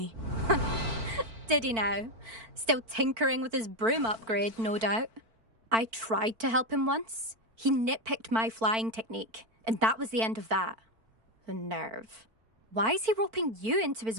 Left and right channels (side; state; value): left; late; 4.5 ms